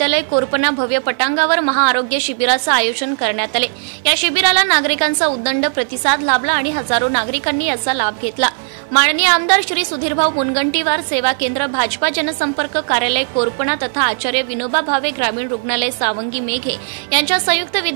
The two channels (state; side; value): silent; left; 59 dB below the other